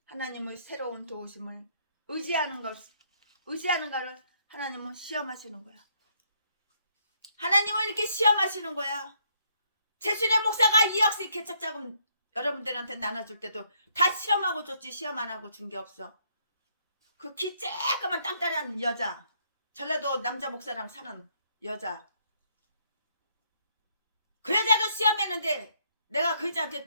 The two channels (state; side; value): inverted; both; correlation -0.71